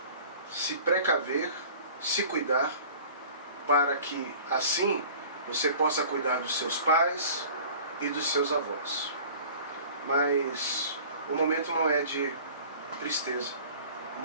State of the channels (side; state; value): both; inverted; correlation -0.45